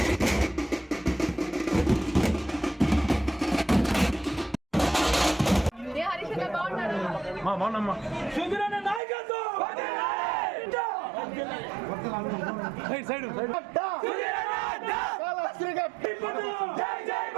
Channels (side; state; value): left; drops out; at 9.0 s